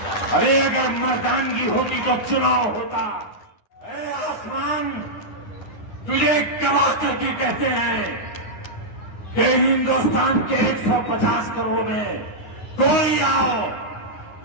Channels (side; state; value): right; late; 9.6 ms